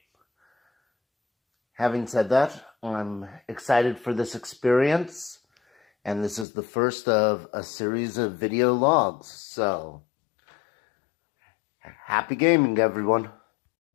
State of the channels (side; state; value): right; drops out; at 6.5 s